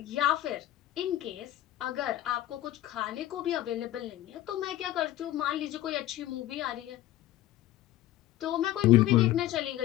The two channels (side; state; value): right; quieter; 14.2 dB